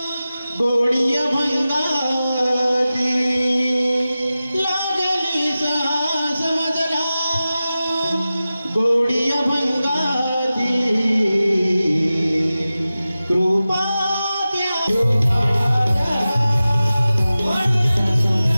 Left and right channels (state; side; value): inverted; both; correlation -0.95